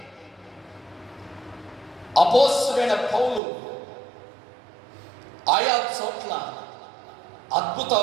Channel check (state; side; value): drops out; left; at 3.4 s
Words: అపోస్తలుడైన పౌలు ఆయా చోట్ల